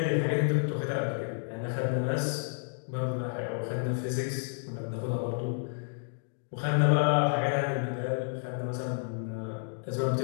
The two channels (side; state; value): right; silent; digital silence